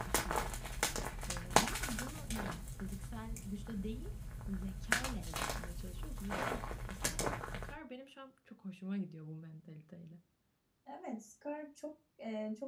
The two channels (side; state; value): both; identical; correlation 1.00